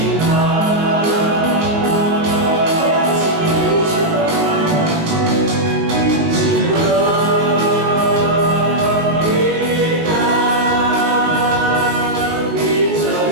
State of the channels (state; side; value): late; left; 19 ms